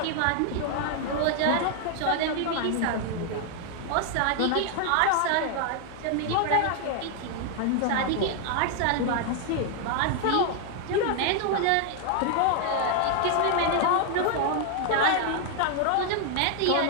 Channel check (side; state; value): both; different; correlation 0.00